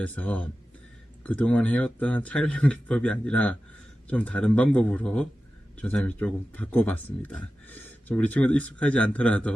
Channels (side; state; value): both; normal; correlation 0.94